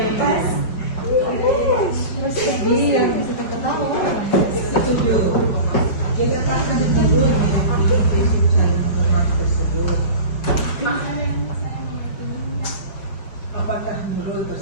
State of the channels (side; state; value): right; late; 5.1 ms